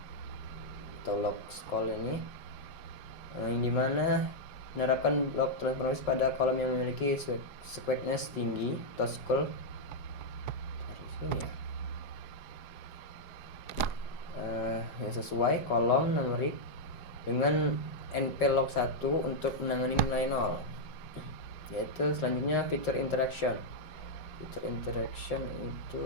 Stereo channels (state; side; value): late; right; 5.3 ms